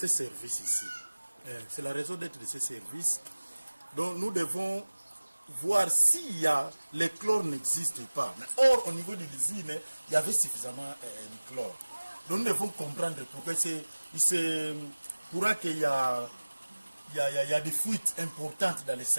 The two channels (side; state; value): both; inverted; correlation -1.00